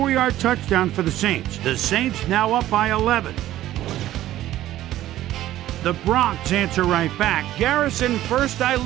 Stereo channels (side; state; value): left; quieter; 14.0 dB